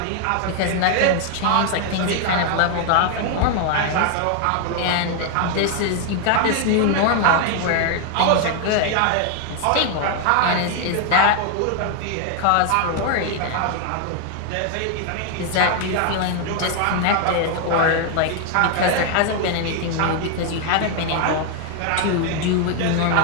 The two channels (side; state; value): both; different; correlation 0.00